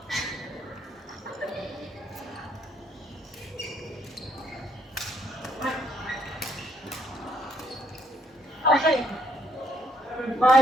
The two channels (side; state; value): both; normal; correlation 0.71